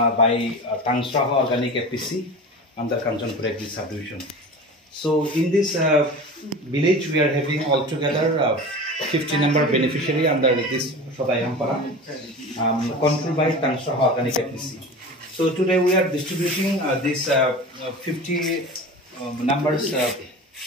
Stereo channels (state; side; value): normal; both; correlation 0.33